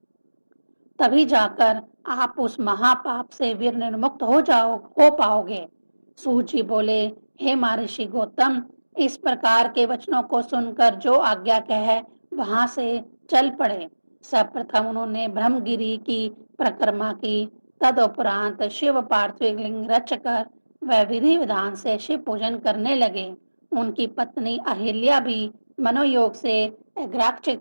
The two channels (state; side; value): inverted; both; correlation -1.00